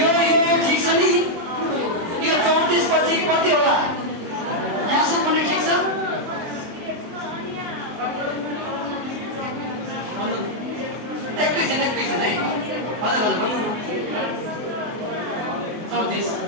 छ नि यो 34 पछि कति होला यहाँसम्म पनि ठिक छ एकैछिन है हजुर हजुर भन्नु न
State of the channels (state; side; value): late; left; 23 ms